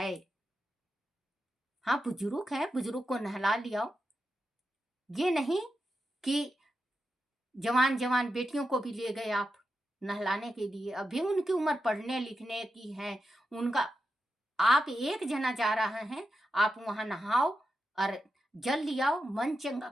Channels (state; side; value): normal; both; correlation 0.88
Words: हाँ बुजुर्ग है, बुजुर्ग को नहला लियाओ। ये नहीं कि जवान जवान बेटियों को भी ले गए आप नहलाने के लिए, अभी उनकी उम्र पढ़ने लिखने की है। उनका आप एक जना जा रहा है, आप वहां नहाओ और जल लियाओ। मन